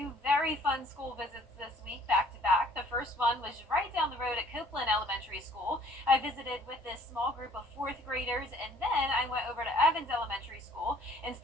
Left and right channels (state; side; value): normal; both; correlation 0.57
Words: very fun school visits this week back to back. The first one was right down the road at Copeland Elementary School. I visited with this small group of 4th graders, and then I went over to Evans Elementary School and